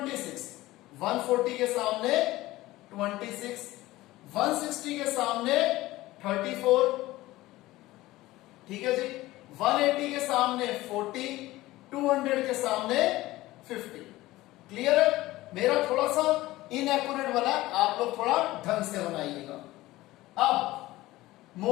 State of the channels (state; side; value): quieter; right; 17.7 dB